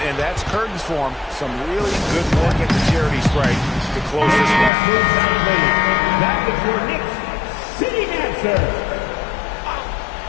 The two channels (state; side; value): drops out; right; at 4.7 s